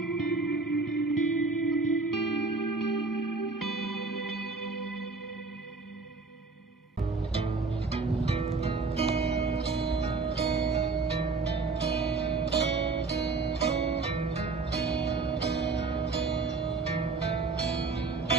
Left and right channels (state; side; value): quieter; left; 4.0 dB